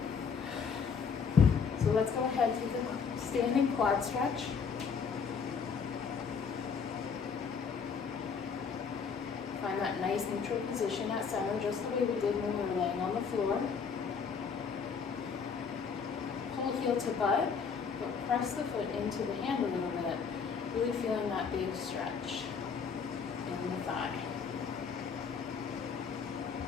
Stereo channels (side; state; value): right; quieter; 6.0 dB